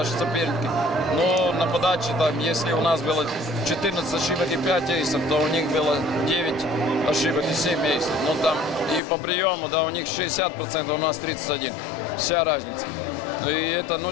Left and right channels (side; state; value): right; drops out; at 9.0 s